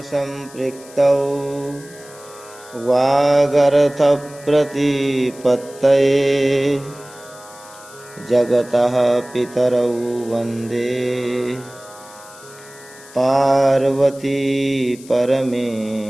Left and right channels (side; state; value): left; noise; hiss, 21 dB below the sound